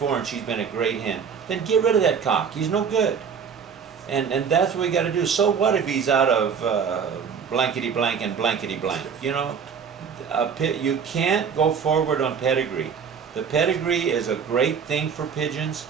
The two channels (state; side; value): quieter; left; 6.7 dB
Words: and she's been a great hen, then get rid of that cock. He's no good. And that's what we got to do. So what if he's out of blankety blank and blankety blank? You know, you can't go forward on pedigree The pedigree is a great thing for pigeons,